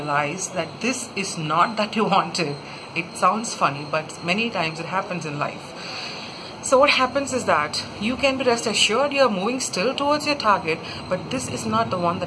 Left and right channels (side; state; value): both; identical; correlation 1.00